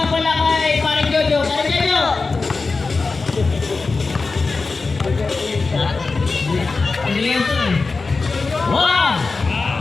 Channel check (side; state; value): right; quieter; 4.0 dB